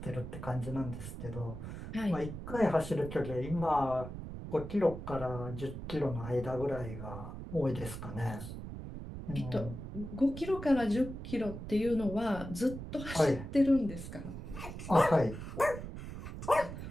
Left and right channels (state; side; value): noise; right; rumble, 9 dB below the sound